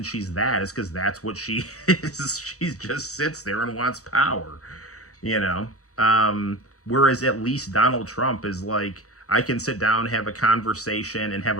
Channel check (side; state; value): right; late; 0.65 ms